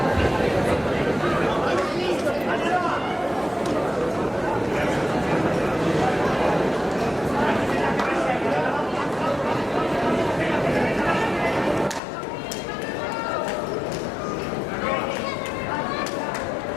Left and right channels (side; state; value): right; drops out; at 12.0 s